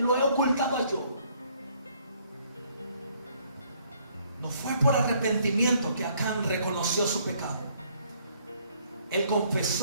yo. No fue por arrepentimiento que Acán reconoció su pecado. Él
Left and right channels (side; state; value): both; inverted; correlation -0.65